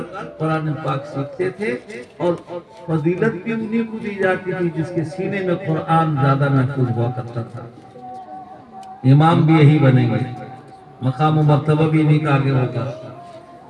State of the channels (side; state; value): both; identical; correlation 1.00